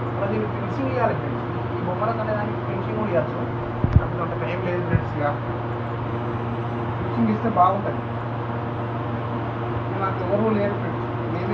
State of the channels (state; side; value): identical; both; correlation 1.00